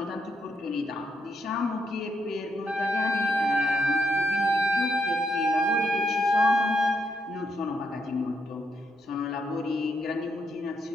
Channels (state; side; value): normal; both; correlation 0.78